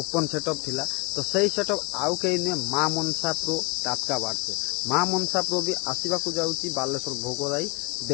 सेटअप थिला। तो सही सेटअप आउ कहीं नुहे माँ मनसा प्रो टाटका बाट से माँ मनसा प्रो भी आसवाक जाऊँगी बालेश्वर भोगराई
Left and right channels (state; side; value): quieter; right; 30.0 dB